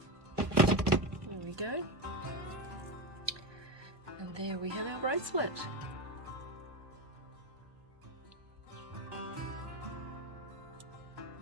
There we go. And there we have our bracelet.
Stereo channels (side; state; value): left; late; 1.2 ms